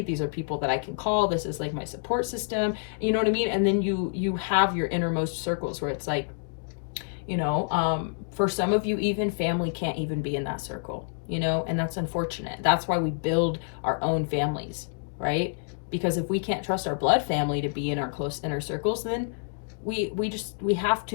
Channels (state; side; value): silent; right; digital silence